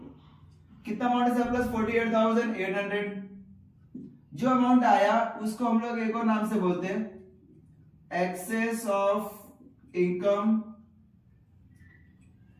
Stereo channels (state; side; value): identical; both; correlation 1.00